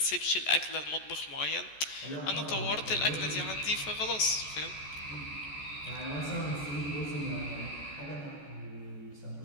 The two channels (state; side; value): late; right; 14 ms